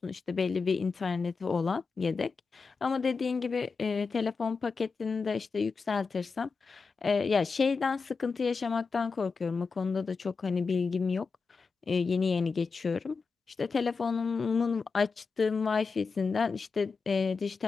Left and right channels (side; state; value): right; quieter; 4.8 dB